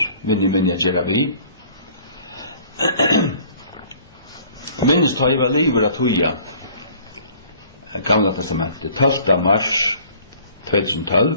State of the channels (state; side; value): inverted; both; correlation -0.53